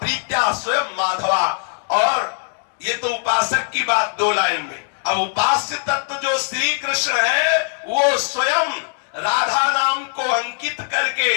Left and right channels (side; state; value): right; silent; 65 dB below the other